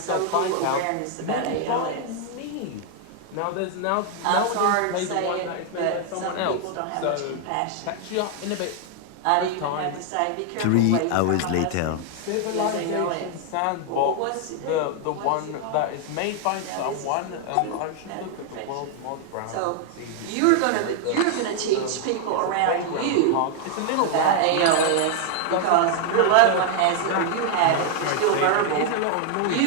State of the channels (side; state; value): both; different; correlation 0.00